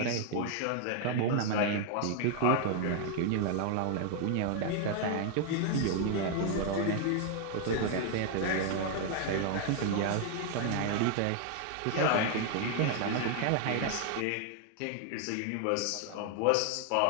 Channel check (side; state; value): both; different; correlation 0.00